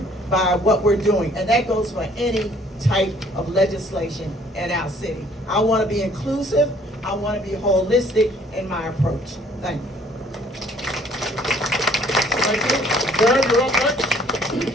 by what we're doing. And that goes for any type of legislation in our city. I want to be inclusive. I want to be holistic in my approach. Thank you. Thank you. Jared, you're up next.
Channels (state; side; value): normal; both; correlation 0.59